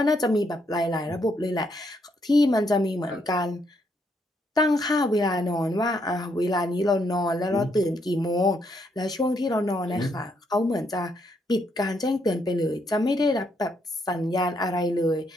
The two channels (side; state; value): both; normal; correlation 0.75